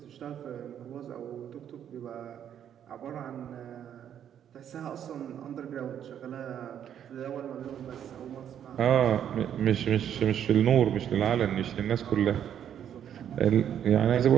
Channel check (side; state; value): left; quieter; 9.5 dB